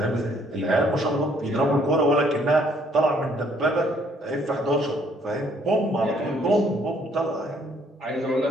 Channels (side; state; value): both; normal; correlation 0.64